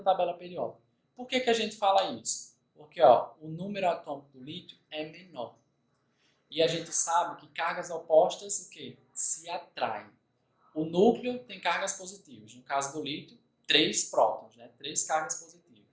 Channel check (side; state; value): both; identical; correlation 1.00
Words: tabela periódica. Por que a gente fala isso? Porque ó, o número atômico do lítio é menor. E a gente sabe que cargas opostas o quê? Se atraem. O núcleo tem cargas positivas. No caso do lítio, 3 prótons, né? 3 cargas